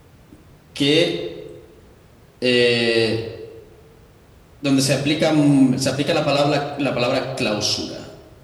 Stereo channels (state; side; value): identical; both; correlation 1.00